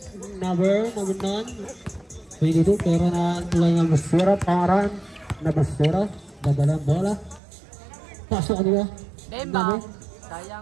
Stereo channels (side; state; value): left; drops out; at 7.4 s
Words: Number 9. 22. Pero na tulay ng Busira. Pangaran. Na Busira. Dadalang bola. Pasok ka dito. Demba.